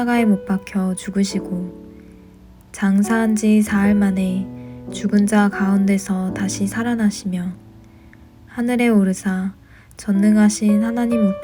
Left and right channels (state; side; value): identical; both; correlation 1.00